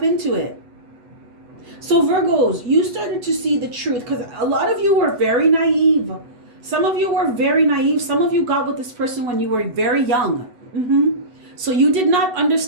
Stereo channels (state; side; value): late; left; 8.0 ms